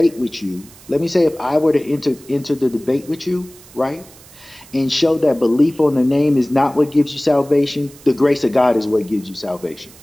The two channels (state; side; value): noise; right; hiss, 23 dB below the sound